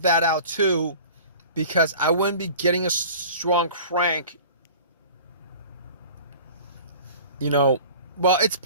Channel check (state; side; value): inverted; both; correlation -0.42